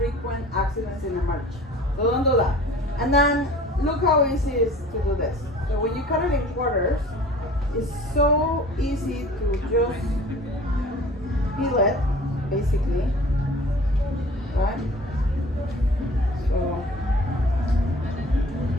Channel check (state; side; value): normal; both; correlation 0.46